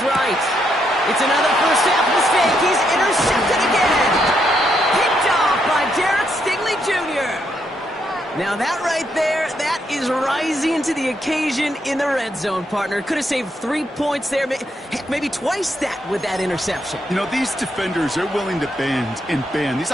right. It's another first half mistake. He's intercepted again. Picked off by Derek Stingley Jr. Now that right there, that is rising to the occasion in the red zone, partner. Could have saved 3 points there. Heck, maybe twice that with that interception. You know, these defenders are willing to bend and bend. These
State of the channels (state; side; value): normal; both; correlation 0.77